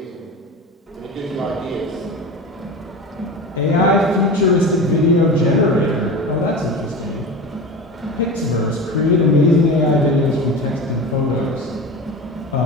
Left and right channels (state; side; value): normal; both; correlation 0.30